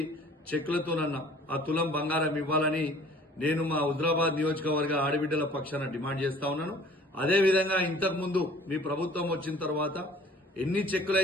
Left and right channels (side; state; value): both; normal; correlation 0.51